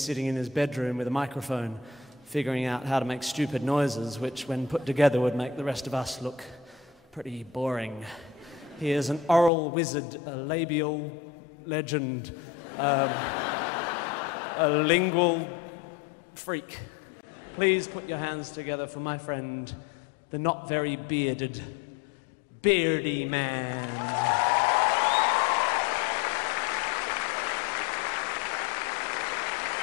in his bedroom with a microphone, figuring out how to make stupid noises, which, when put together, would make the rest of us look pretty boring. He is an oral wizard, a labial legend, a lingual freak. Please put your hands together for my friend, the not very bearded Beardyman.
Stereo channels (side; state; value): right; drops out; at 9.5 s